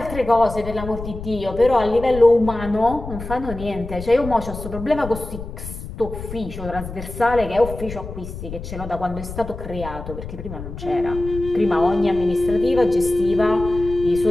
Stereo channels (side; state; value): left; noise; rumble, 10 dB below the sound